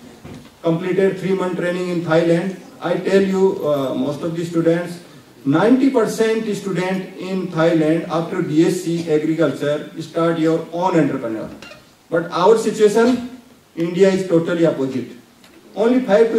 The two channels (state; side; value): identical; both; correlation 1.00